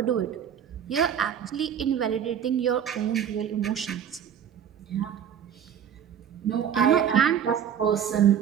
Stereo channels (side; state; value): left; quieter; 8.8 dB